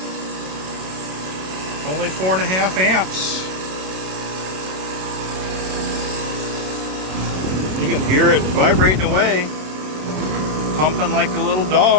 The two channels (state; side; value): late; left; 27 ms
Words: Only 4.5 amps. You can hear it vibrating away, pumping like a little